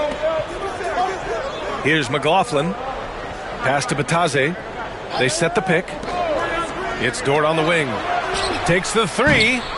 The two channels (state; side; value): identical; both; correlation 1.00